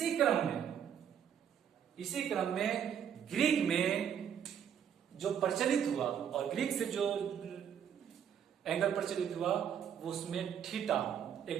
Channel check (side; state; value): left; quieter; 8.6 dB